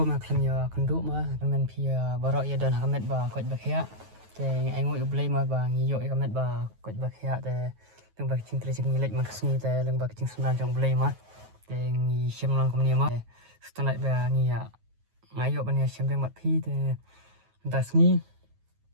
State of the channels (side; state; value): left; late; 9.3 ms